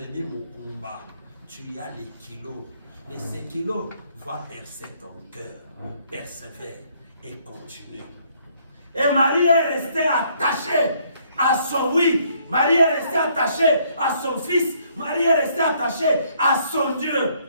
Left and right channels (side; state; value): both; inverted; correlation -0.66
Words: mon combat. Tu as les kilos. Mais ces kilos vont percer ton cœur. Persévère et continue. Et Marie est restée attachée à son oui. Marie est restée attachée à son fils. Marie est restée attachée à son Dieu.